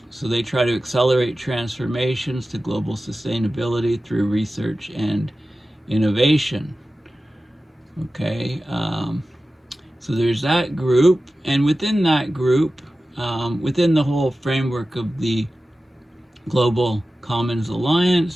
So they try to accelerate transformations to global sustainability through research and innovation. Okay, so there's that group, and within that group, within the whole framework of the Global Commons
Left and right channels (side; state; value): both; normal; correlation 0.95